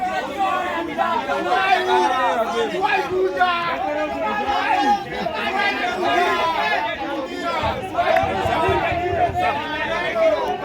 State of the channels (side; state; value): both; identical; correlation 1.00